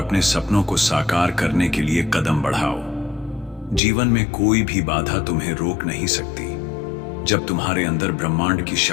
सपनों को साकार करने के लिए कदम बढ़ाओ। जीवन में कोई भी बाधा तुम्हें रोक नहीं सकती जब तुम्हारे अंदर ब्रह्मांड की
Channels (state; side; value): drops out; right; at 3.8 s